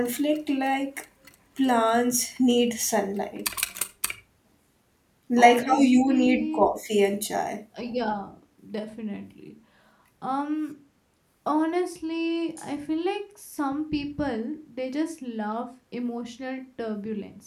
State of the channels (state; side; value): identical; both; correlation 1.00